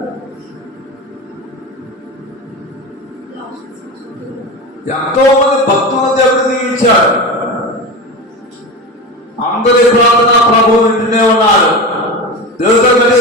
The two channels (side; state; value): both; normal; correlation 0.25